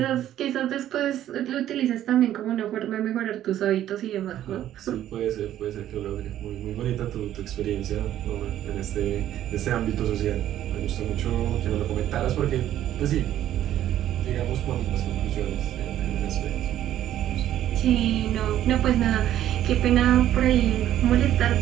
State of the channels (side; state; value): left; quieter; 12.0 dB